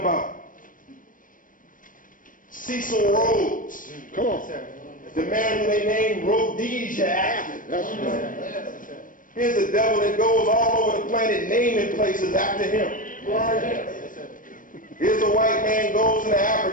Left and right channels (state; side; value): late; right; 0.39 ms